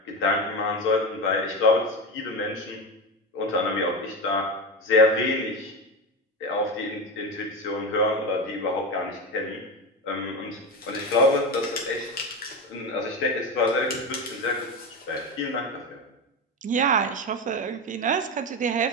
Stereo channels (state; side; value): normal; both; correlation 0.19